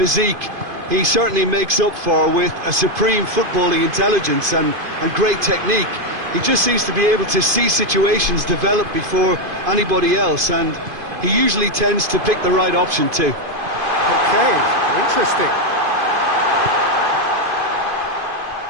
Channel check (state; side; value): late; left; 2.5 ms